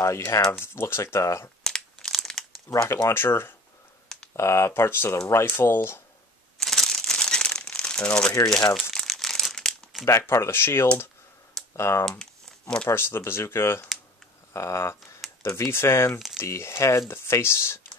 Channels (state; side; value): normal; both; correlation 0.43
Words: have, looks like the rocket launcher, parts of the rifle, and over here you have back part of the shield, more parts of the bazooka, the V-fin, the head, the face